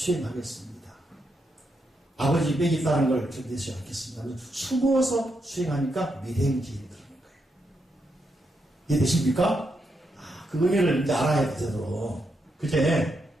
아버지 빽이 있다는 걸 견디지 않겠습니다. 숨어서 수행하니까 미행지인이 그러는 거예요. 이해되십니까? 그 의미를 이제 알아야 돼, 제대로. 그제?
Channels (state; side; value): normal; both; correlation 0.82